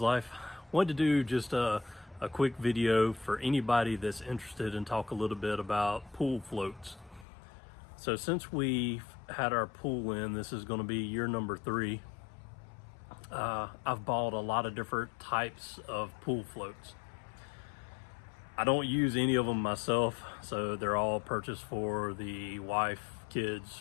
Life. Wanted to do just a quick video for anybody that's interested in talk a little bit about pool floats. So since we've had our pool in, this is going to be year number 3. I've bought a lot of different types of pool floats. I don't use any of them myself, so they're all purchased for the wife, kids,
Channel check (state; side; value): drops out; right; at 7.2 s